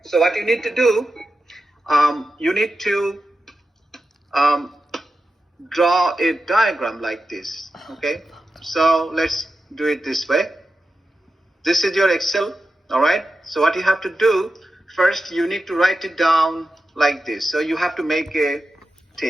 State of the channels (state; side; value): normal; both; correlation 0.91